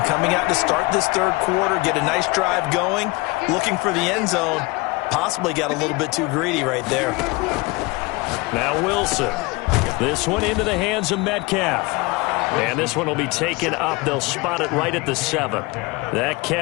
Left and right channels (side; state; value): right; quieter; 23.6 dB